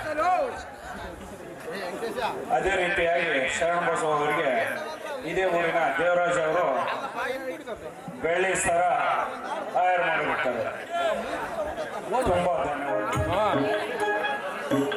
ಅದೇ ರೀತಿಯಾಗಿ ಶರಣ ಬಸವ ಅವರಿಗೆ ಇದೇ ಊರಿನ ದೇವರಾಜ್ ಅವರು ಬೆಳ್ಳಿ ಸರ ಆಯರ್ ಮಾಡಿಬಿಡ್ತಾರೆ. ತುಂಬಾ ಧನ್ಯವಾದ.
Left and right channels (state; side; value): identical; both; correlation 1.00